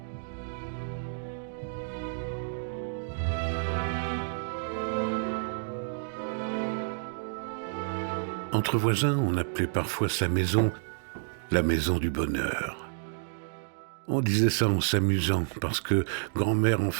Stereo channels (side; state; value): left; silent; digital silence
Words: Entre voisins, on appelait parfois sa maison la maison du bonheur. On disait ça en s'amusant parce que grand-mère en